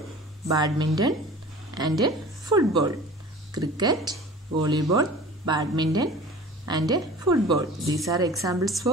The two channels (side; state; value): both; normal; correlation 0.42